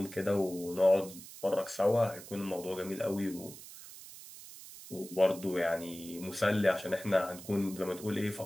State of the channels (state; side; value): noise; right; hiss, 15 dB below the sound